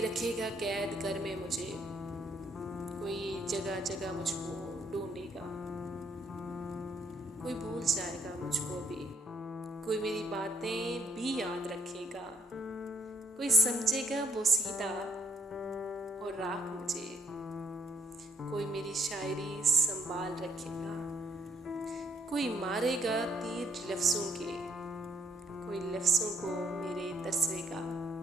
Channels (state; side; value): normal; both; correlation 0.69